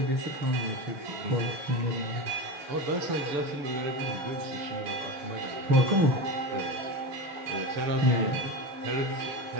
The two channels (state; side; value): late; left; 6.9 ms